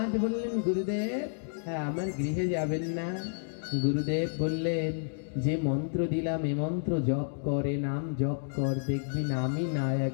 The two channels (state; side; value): silent; right; digital silence